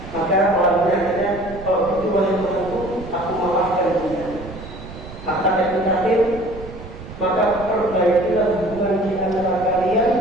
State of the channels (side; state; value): right; noise; rumble, 14 dB below the sound